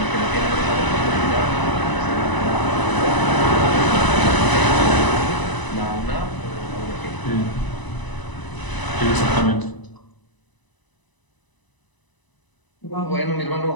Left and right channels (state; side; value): late; right; 1.0 ms